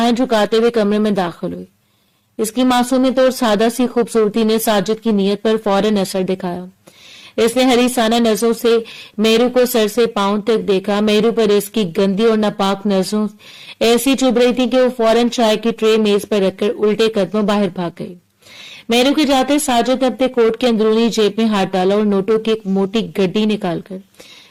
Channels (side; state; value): both; identical; correlation 1.00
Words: جھکاتے ہوئے کمرے میں داخل ہوئی۔ اس کی معصومیت اور سادہ سی خوبصورتی نے ساجد کی نیت پر فوراً اثر دکھایا۔ اس نے حریصانہ نظروں سے مہرو کو سر سے پاؤں تک دیکھا۔ مہرو پر اس کی گندی اور ناپاک نظروں ایسی چبھ رہی تھی کہ وہ فوراً چائے کی ٹرے میز پر رکھ کر الٹے قدموں باہر بھاگ گئی۔ مہرو کے جاتے ساجد نے اپنے کوٹ کے اندرونی جیب میں ہاتھ ڈالا اور نوٹوں کی ایک موٹی گڈی نکال کر